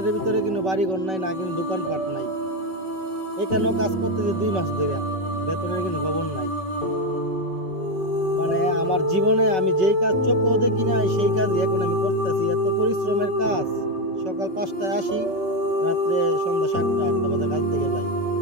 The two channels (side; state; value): left; late; 5.3 ms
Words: ভিতরে কোনো বাড়িঘর নাই, না কোনো দোকানপাট নাই। এখানেও কাজ করতেছে 2 মাস ধরে, বেতনের কোনো খবর নাই। মানে আমার জীবনে আমি যেই কাজ চোখেও দেখি নাই সেই কাজই এখন আমি করতেছি। এত পরিশ্রমের কাজ। সকাল 5টায় আসি, রাত্রে সন্ধ্যা 7টা-8টা বাজে কাজ থেকে যাই।